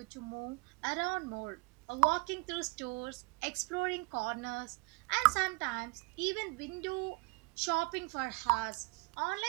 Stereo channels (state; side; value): quieter; left; 29.3 dB